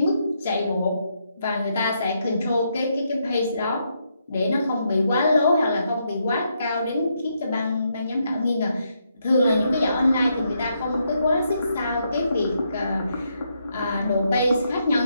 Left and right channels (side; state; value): both; inverted; correlation -0.78